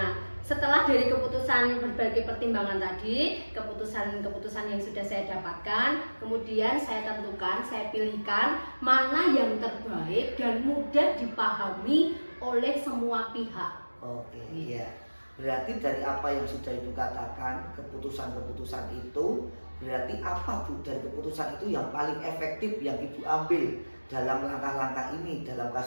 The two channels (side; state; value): both; inverted; correlation -1.00